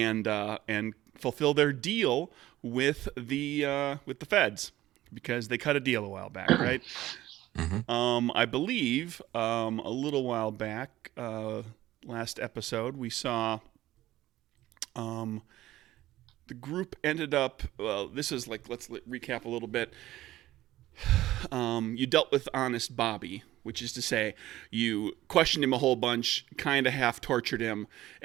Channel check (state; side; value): quieter; left; 15.3 dB